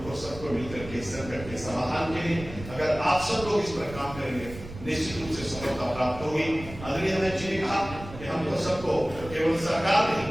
सबको मिलकर के संकट के समाधान के लिए अगर आप सब लोग इस पर काम करेंगे निश्चित रूप से सफलता प्राप्त होगी। आदरणीय अध्यक्ष जी ने कहा कि हमको सबको, केवल सरकार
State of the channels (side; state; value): right; noise; rumble, 13 dB below the sound